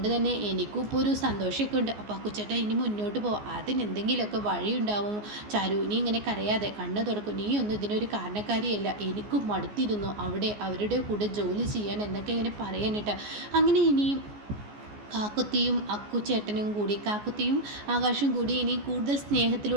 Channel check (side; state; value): left; late; 14 ms